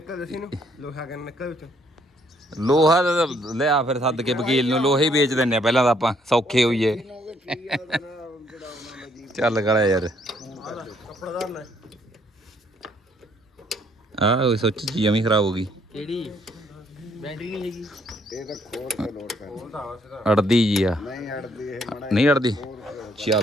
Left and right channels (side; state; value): both; normal; correlation 0.68